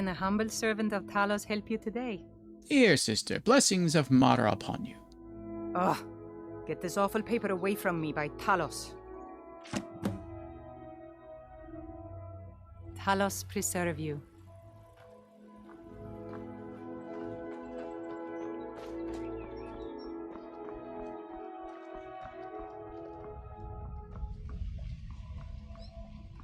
a humble servant of Talos help you today? Here, sister. Blessings of Mara upon you. Ugh. Get this awful paper away from me by Talos. Talos preserve you.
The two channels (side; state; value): both; identical; correlation 1.00